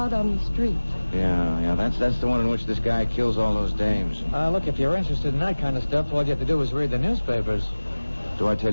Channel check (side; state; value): both; inverted; correlation -1.00